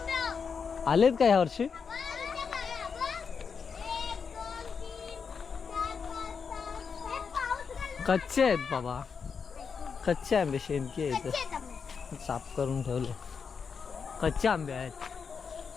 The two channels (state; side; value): quieter; right; 5.9 dB